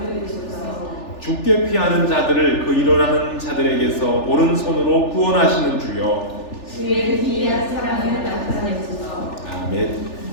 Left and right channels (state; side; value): late; right; 3.4 ms